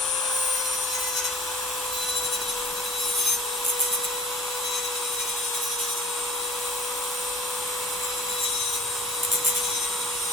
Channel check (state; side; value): normal; both; correlation 0.42